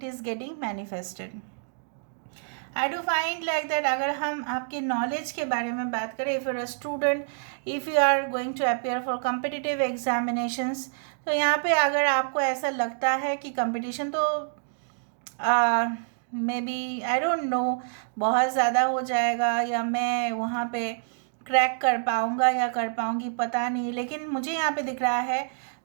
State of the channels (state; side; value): silent; left; digital silence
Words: is getting manifested. I do find like that अगर हम आपके नॉलेज के बारे में बात करें, if you are a student, if you are going to appear for competitive examinations, तो यहाँ पे अगर आपको ऐसा लगता है कि कंपटीशन तो maybe I don't know बहुत ज़्यादा हो जाएगा, या मैं वहाँ पे क्रैक कर पाऊँगा या कर पाऊँगी पता नहीं, लेकिन मुझे यहाँ पे दिख रहा है